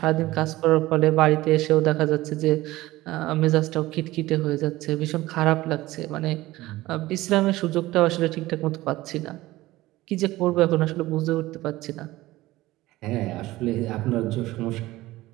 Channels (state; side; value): quieter; left; 17.7 dB